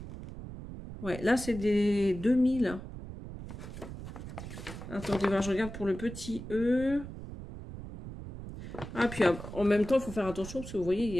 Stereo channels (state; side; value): noise; right; rumble, 11 dB below the sound